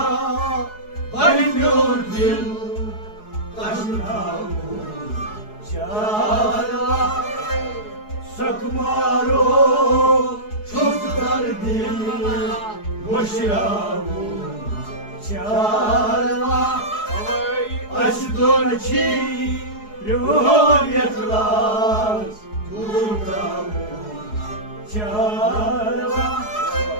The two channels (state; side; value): late; right; 4.7 ms